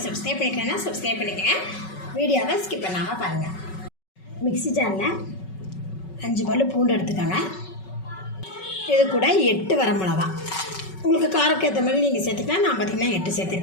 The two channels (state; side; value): late; right; 5.3 ms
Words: சப்ஸ்கிரைப் பண்ணிக்கலன்னா சப்ஸ்கிரைப் பண்ணிக்கோங்க. வீடியோவை ஸ்கிப் பண்ணாமல் பாருங்கள். மிக்ஸி ஜாரில் 5 பல்லு பூண்டு எடுத்துக்கோங்க. இது கூட 8 வரமிளகா, உங்களுக்கு காரக்கு ஏற்ற மாதிரி நீங்கள் சேர்த்துக்கலாம். நான் பார்த்திங்கன்னா 8